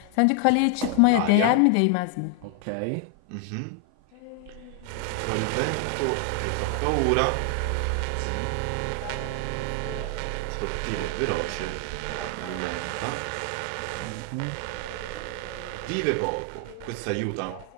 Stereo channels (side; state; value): both; different; correlation 0.00